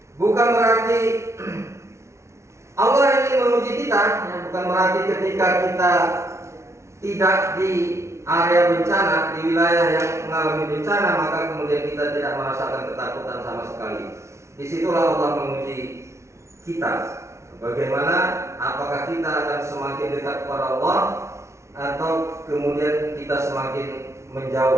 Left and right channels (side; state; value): left; late; 0.13 ms